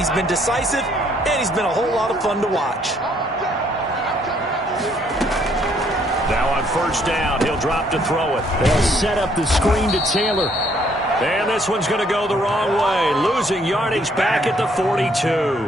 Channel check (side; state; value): both; normal; correlation 0.66